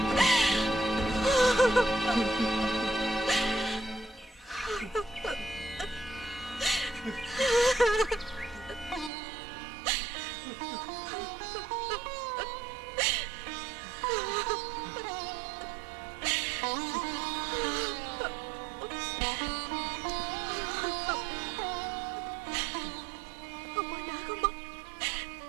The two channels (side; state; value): left; drops out; at 9.1 s